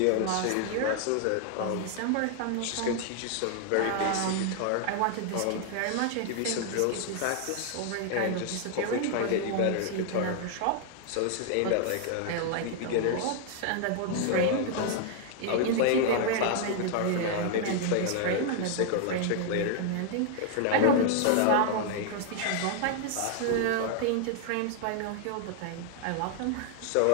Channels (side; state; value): both; different; correlation 0.00